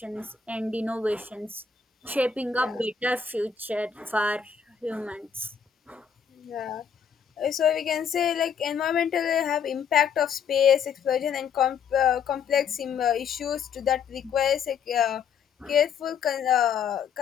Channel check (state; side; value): quieter; right; 6.9 dB